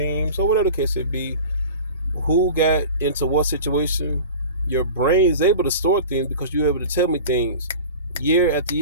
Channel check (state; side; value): inverted; both; correlation -0.37